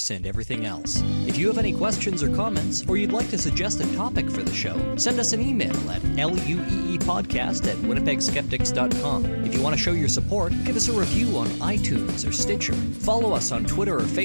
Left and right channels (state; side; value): inverted; both; correlation -1.00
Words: and Everything Else. If you have any questions or comments, or you'd like to suggest a topic for the show, send us an email at lueepodcast@winnipegskeptics.com. If you want to show your support, give us a review on iTunes or Stitcher. Follow us on Twitter or